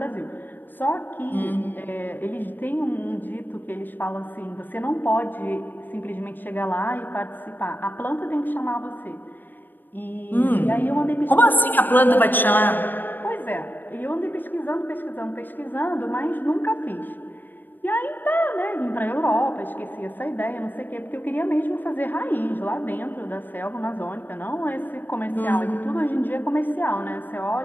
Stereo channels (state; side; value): late; right; 0.091 ms